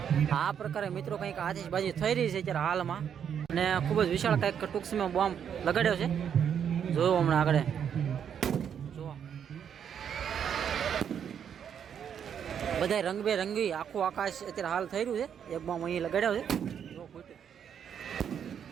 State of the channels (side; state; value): left; quieter; 8.2 dB